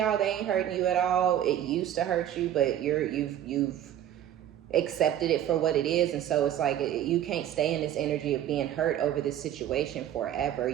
they ain't hurting you at all. It used to hurt you, but you've accepted it for what it is. And so it's like, you can't stay in this energy of being hurt over this situation forever.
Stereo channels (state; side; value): quieter; left; 11.1 dB